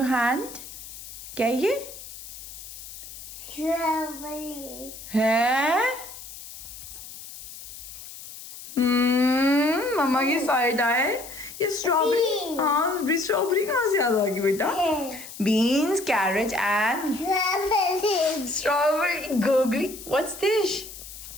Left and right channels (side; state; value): left; noise; hiss, 14 dB below the sound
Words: your hand? क्या है ये? Strawberry. है मम्मा की side आए ये strawberry. Beans. हाँ strawberry कहाँ से याद आ गई बेटा? Beans carrot and Strawberry. Strawberry googly. What's this?